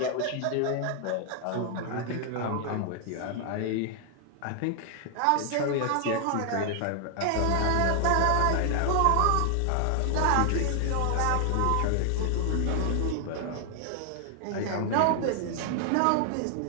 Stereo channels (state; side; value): different; both; correlation 0.00